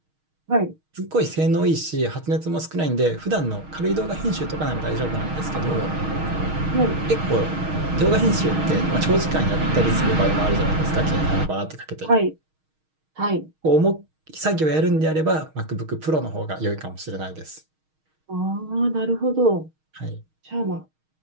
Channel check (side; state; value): left; late; 6.4 ms